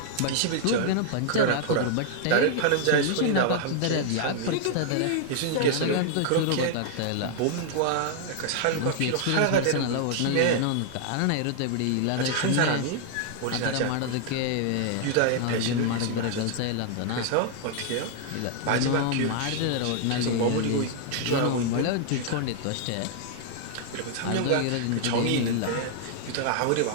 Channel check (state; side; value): different; both; correlation 0.00